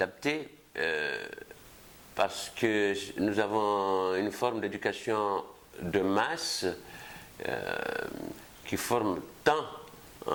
parce que nous avons une forme d'éducation de masse qui forme tant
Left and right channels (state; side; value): identical; both; correlation 1.00